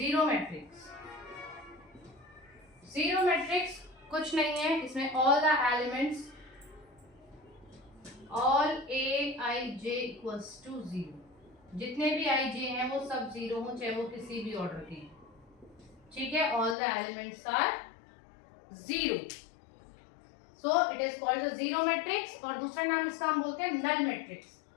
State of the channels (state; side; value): drops out; right; at 16.8 s